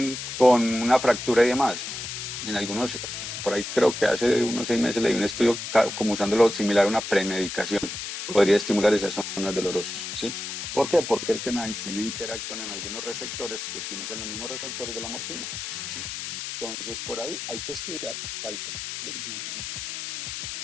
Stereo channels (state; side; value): noise; left; hiss, 6 dB below the sound